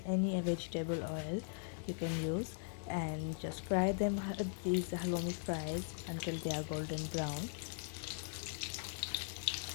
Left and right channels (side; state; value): right; silent; 51 dB below the other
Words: any vegetable oil you can use, and just fry them, these halloumi fries, until they are golden brown.